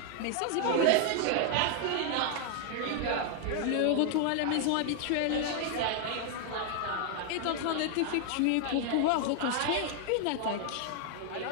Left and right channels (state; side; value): different; both; correlation 0.00